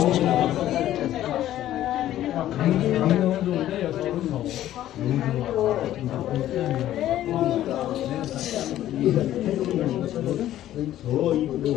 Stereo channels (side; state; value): right; quieter; 13.0 dB